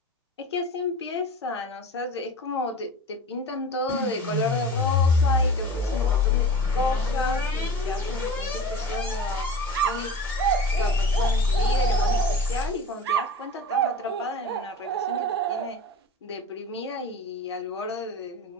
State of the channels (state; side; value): normal; both; correlation 0.35